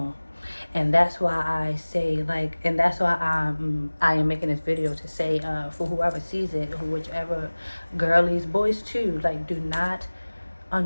And that's why I say, like, and that's why I am making this video to say, for whoever sees it, whichever girlies, boys too, like, do not,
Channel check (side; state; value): both; inverted; correlation -1.00